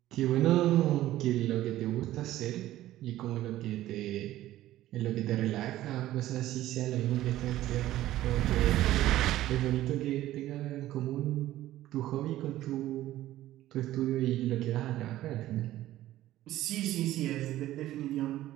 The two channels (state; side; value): quieter; left; 14.6 dB